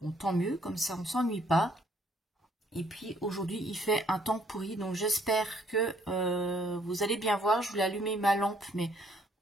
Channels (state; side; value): normal; both; correlation 0.65